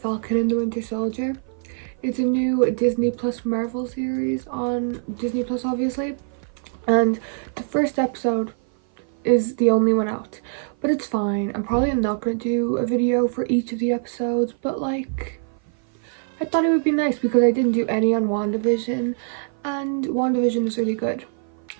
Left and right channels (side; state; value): left; silent; 56 dB below the other